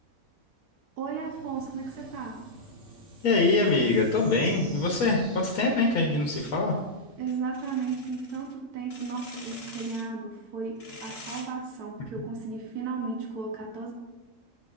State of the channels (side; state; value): both; normal; correlation -0.07